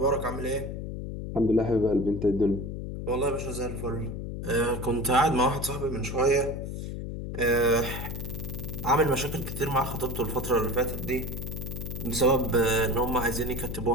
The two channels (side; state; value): left; noise; hum, 6 dB below the sound